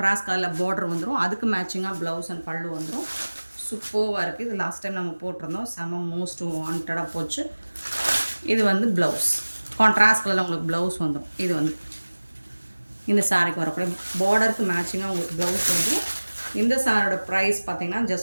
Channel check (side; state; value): both; inverted; correlation -1.00